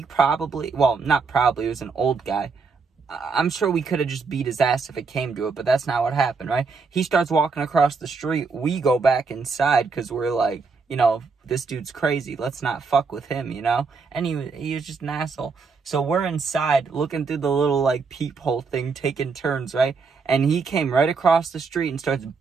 probably, it was an old guy. I'm sure we could have just beat his ass if it came to it, but that's not what happened, right? He starts walking across the street. We go back inside because we're like, you know, this dude's crazy. Let's not fuck with him, you know? And he was just an asshole. So we're inside looking through the little, like, peephole thing, taking turns, right? And he came right across the street and starts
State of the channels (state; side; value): quieter; left; 4.7 dB